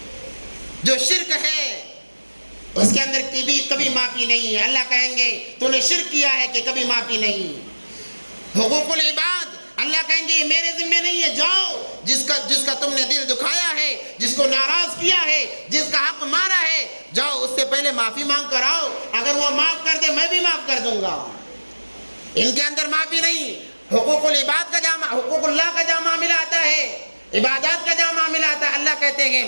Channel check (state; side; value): inverted; both; correlation -1.00